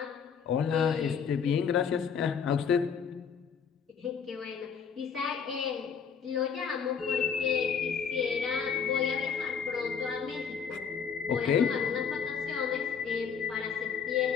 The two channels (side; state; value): right; quieter; 6.6 dB